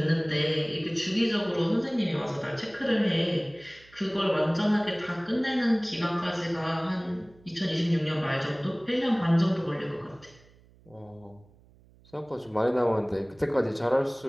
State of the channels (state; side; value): noise; right; hum, 27 dB below the sound